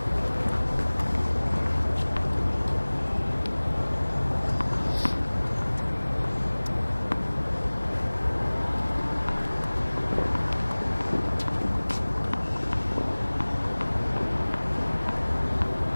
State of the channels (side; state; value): both; inverted; correlation -1.00